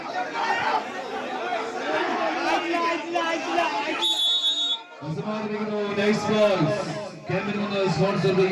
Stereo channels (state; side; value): identical; both; correlation 1.00